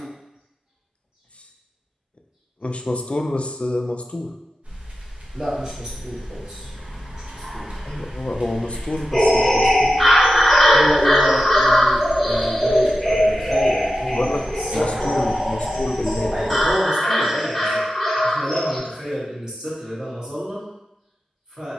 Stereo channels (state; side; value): normal; both; correlation 0.91